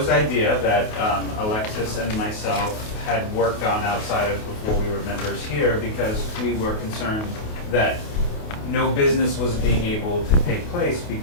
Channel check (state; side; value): late; right; 28 ms